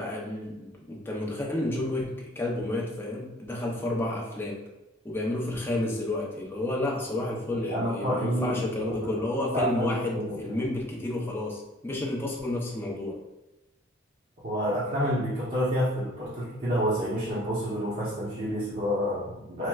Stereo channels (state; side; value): normal; both; correlation 0.54